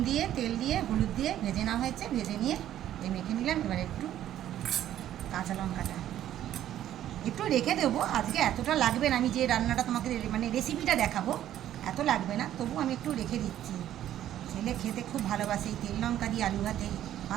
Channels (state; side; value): quieter; left; 11.9 dB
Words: দিয়ে তেল দিয়ে হলুদ দিয়ে ভেজে নেওয়া হয়েছে, ভেজে নিয়ে এই মেখে নিলাম। এবার একটু কাঁচা লঙ্কাটা একটু রেখে দেবো, আজকে এতটা লাগবে না। আমি যে রান্নাটা তোমাকে মানে রেসিপিটা দেখাবো এত লাগবে না, তবু আমি একটু রেখে দিচ্ছি। ছেলে খেতে খুব ভালোবাসে এই তেল লঙ্কা দিয়ে আলু ভাতে